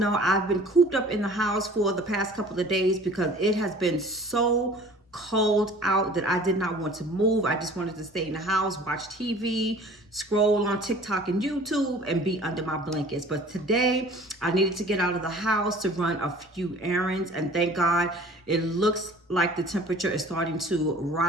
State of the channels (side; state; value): both; normal; correlation 0.47